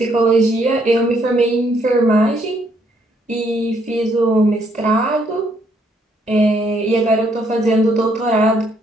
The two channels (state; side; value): normal; both; correlation 0.70